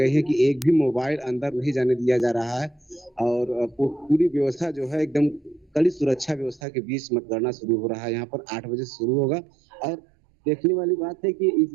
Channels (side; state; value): left; drops out; at 6.6 s